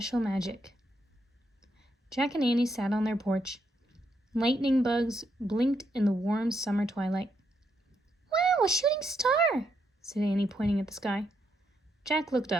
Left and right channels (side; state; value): both; normal; correlation 0.78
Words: Magic. Jack and Annie sat on their porch. Lightning bugs blinked in the warm summer twilight. "Wow, a shooting star!" said Annie, pointing at the sky. Jack looked